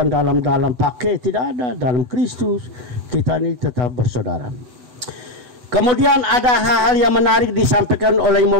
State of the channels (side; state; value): left; late; 8.1 ms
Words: dalam pakai, tidak ada. Dalam Kristus kita ini tetap bersaudara. Kemudian ada hal-hal yang menarik disampaikan oleh